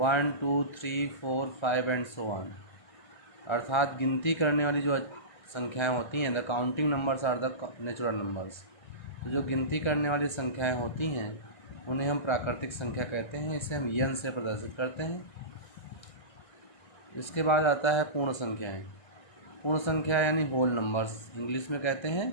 2, 3, 4, 5 एंड सो ऑन। अर्थात गिनती करने वाली जो संख्याएं होती हैं, the counting numbers are the natural numbers. तो जो गिनती करने वाली संख्याएं होती हैं उन्हें हम प्राकृतिक संख्या कहते हैं। इसे हम यन से प्रदर्शित करते हैं। इसके बाद आता है पूर्ण संख्याएं। पूर्ण संख्या यानी होल नंबर्स, इंग्लिश में कहते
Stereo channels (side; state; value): right; late; 1.3 ms